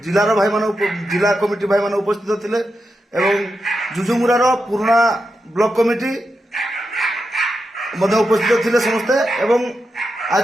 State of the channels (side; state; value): both; normal; correlation 0.87